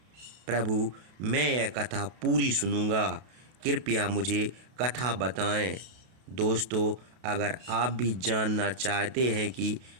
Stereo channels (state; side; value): late; left; 32 ms